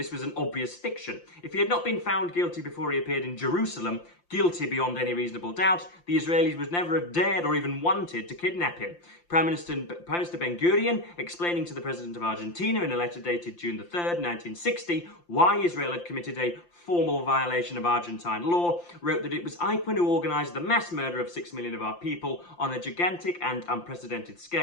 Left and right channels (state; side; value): late; right; 5.8 ms